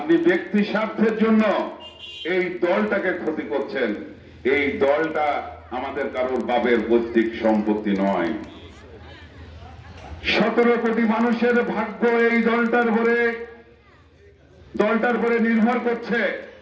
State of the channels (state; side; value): identical; both; correlation 1.00